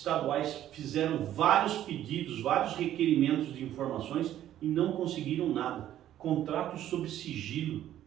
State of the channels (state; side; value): quieter; left; 12.1 dB